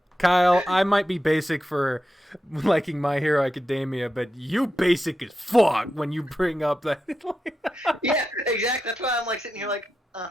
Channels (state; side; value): normal; both; correlation 0.89